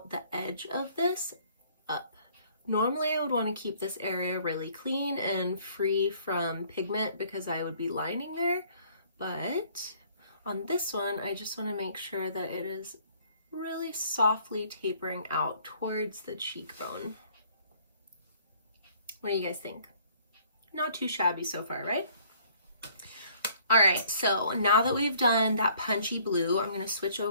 the edge of this up. Normally I would want to keep this area really clean and free from pigment because I would be lining there, but on this one I just want to make sure that it is really softly tapering out towards the cheekbone. What do you guys think? Not too shabby so far, right? All right, so now that we've done that punchy blue, I'm gonna switch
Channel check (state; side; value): inverted; both; correlation -0.59